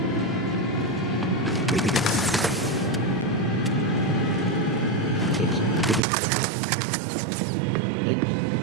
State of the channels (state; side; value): drops out; left; at 6.0 s